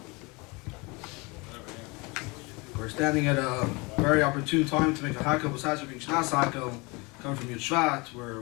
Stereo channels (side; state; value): right; quieter; 27.1 dB